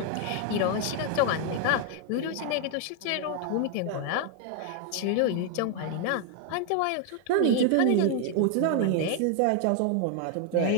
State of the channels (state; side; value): different; both; correlation 0.00